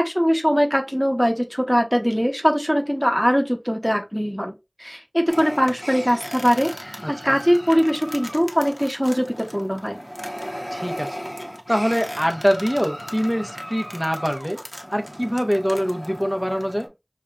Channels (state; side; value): identical; both; correlation 1.00